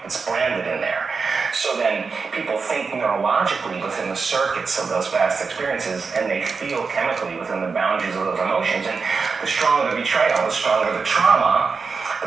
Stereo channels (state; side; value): quieter; left; 4.9 dB